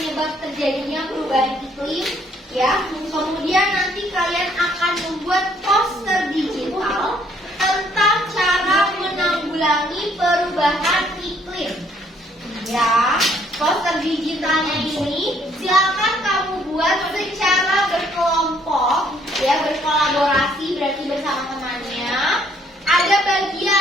terjadinya perubahan iklim, ya. Kemudian nanti kalian akan membuat poster digital tentang cara menanggulangi perubahan iklim. Ya, poster digitalnya ini silakan kamu buat secara berkelompok, ya, berkolaborasi berarti bersama temannya. Ada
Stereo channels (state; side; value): normal; both; correlation 0.65